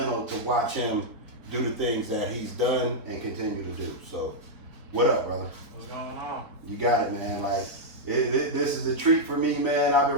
to watch him do the things that he's done and continue to do. So, what up, brother? What's going on? You got it, man. Like, this is a treat for me, man. I've been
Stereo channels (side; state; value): left; late; 3.9 ms